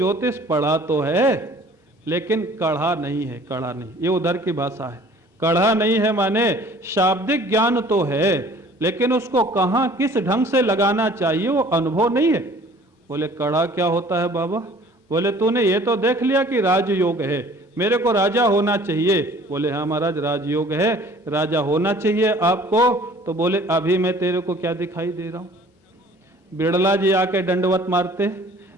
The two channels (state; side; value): normal; both; correlation 0.51